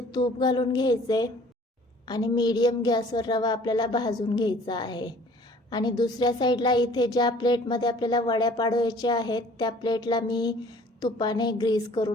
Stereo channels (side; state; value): both; normal; correlation 0.52